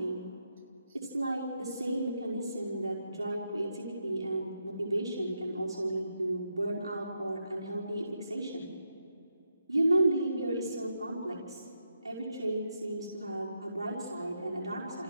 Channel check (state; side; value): inverted; both; correlation -0.83